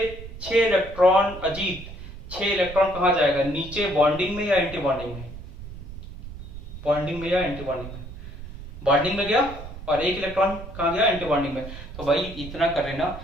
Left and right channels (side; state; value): right; noise; rumble, 12 dB below the sound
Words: 6 इलेक्ट्रॉन, अजीत 6 इलेक्ट्रॉन कहां जाएगा? नीचे बॉन्डिंग में या एंटी बॉन्डिंग में? बॉन्डिंग में या एंटी बॉन्डिंग में? बॉन्डिंग में गया, और 1 इलेक्ट्रॉन कहां गया? एंटी बॉन्डिंग में। तो भाई इतना कर लेना,